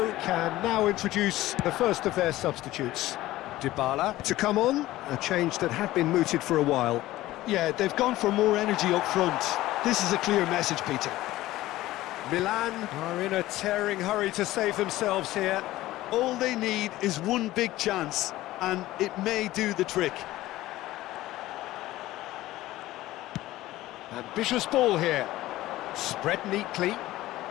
can now introduce the first of their substitutes. Dybala to come on, a change that had been mooted for a while. Yeah, they've gone for more energy up front. This is a clear message, Peter. Milan are in a tearing hurry to save themselves here. All they need is one big chance, and it may do the trick. Ambitious ball here. Spread neatly.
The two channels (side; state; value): right; quieter; 16.3 dB